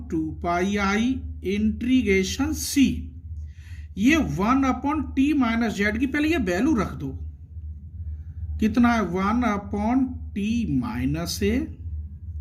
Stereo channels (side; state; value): both; identical; correlation 1.00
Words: इंटीग्रेशन c, ये 1/t-z की पहले ये वैल्यू रख दो। कितना है? 1/t-a